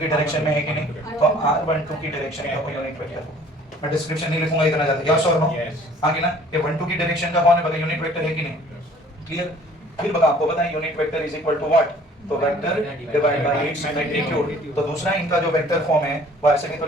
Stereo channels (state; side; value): normal; both; correlation 0.53